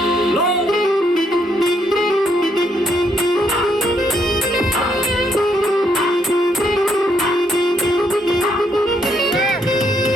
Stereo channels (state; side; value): normal; both; correlation 0.74